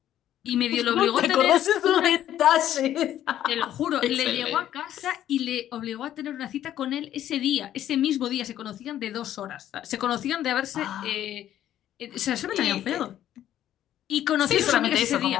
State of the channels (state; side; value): quieter; right; 11.7 dB